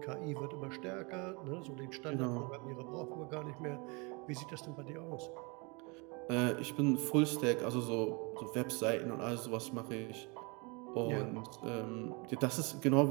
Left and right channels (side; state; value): left; quieter; 29.8 dB